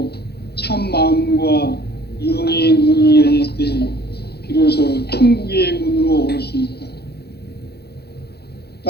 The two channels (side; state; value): right; late; 0.47 ms